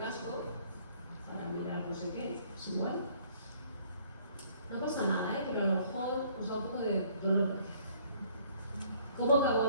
para mirar no sé qué, es igual. No pasa nada, pero a lo mejor os da un poco de dolor. ¿Cómo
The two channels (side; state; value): both; inverted; correlation -0.60